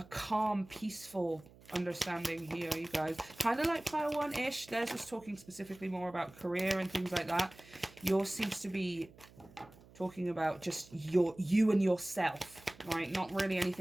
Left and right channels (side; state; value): right; noise; hum, 23 dB below the sound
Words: calm, peaceful understanding here, you guys. Kind of like Pile 1-ish. Theirs was talking specifically more about career and things like that. Yours seems to be talking about just you and yourself, right? Not really